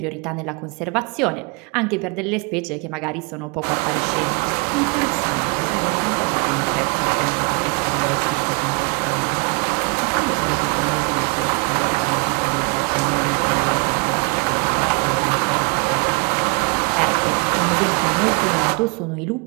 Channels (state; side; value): quieter; left; 30.1 dB